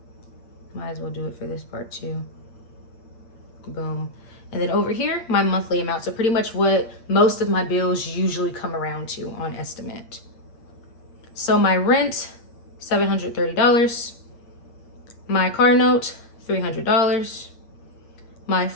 Might as well do it for this part too. Boom. And then over here, my monthly amount. So pretty much what most of my bills usually come around to on estimate. So my rent, $730. My car note, $300. My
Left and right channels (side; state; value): right; late; 8.7 ms